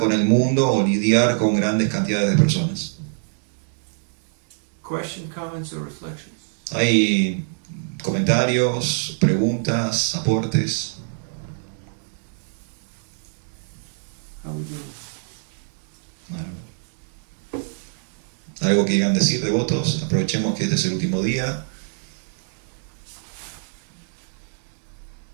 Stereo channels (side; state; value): left; silent; digital silence